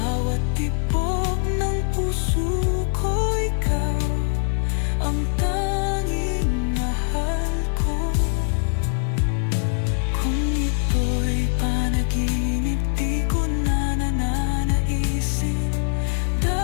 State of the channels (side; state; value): right; silent; digital silence